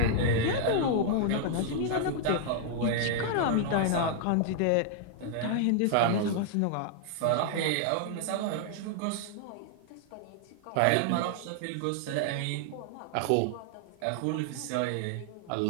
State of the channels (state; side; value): different; both; correlation -0.01